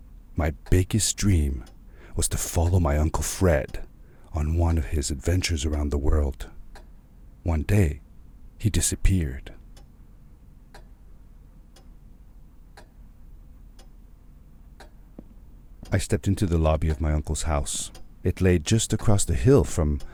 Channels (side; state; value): both; identical; correlation 1.00